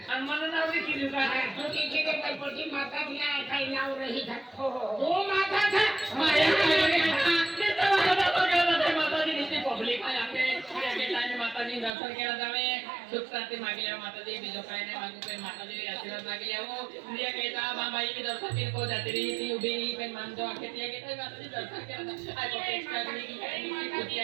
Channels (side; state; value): left; drops out; at 11.9 s